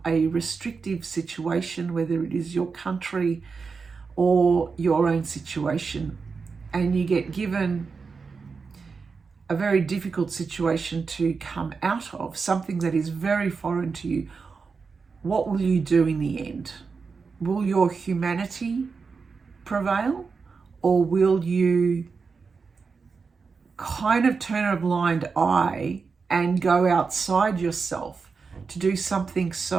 a restrictive situation, whether it is your country or your own situation, and you get given a very difficult situation to come out of, something that is very foreign to you, what will you do in the end? Will your humanity prevail, or will you kind of turn a blind eye and go outside yourself to do something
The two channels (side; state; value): left; quieter; 5.0 dB